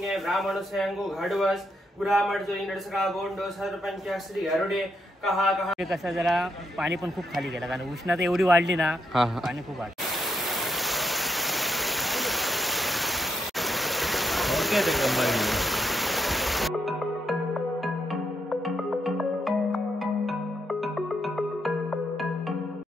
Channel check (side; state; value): both; normal; correlation 0.78